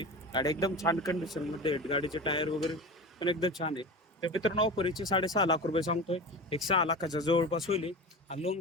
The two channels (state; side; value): normal; both; correlation 0.30